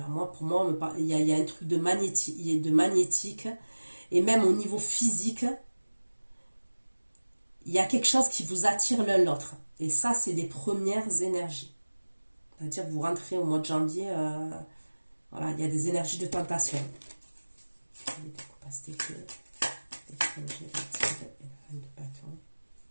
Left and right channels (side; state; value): both; inverted; correlation -1.00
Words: pour moi, il y a un truc de magnétique. Et même au niveau physique, il y a quelque chose qui vous attire l'un l'autre. Et ça, c'est les premières énergies. C'est-à-dire que vous rentrez au mois de janvier, voilà, il y a des énergies de tentation. Les découpages d'été, l'étranger, le tigre et la reine de bâton.